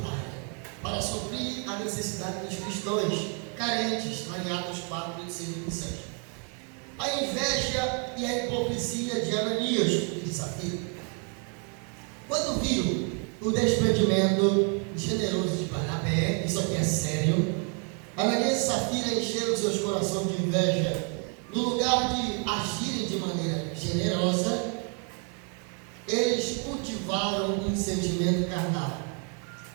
para suprir a necessidade dos cristãos carentes, lá em Atos 4:5 e 6. A inveja e a hipocrisia de Ananias e de Safira. Quando viram o desprendimento generoso de Barnabé, isso aqui é sério, Ananias e Safira encheram seus corações de inveja. No lugar de agirem de maneira generosa, eles cultivaram um sentimento carnal,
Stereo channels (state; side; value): quieter; left; 39.7 dB